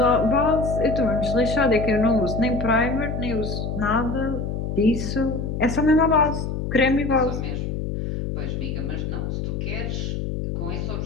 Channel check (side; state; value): left; noise; hum, 3 dB below the sound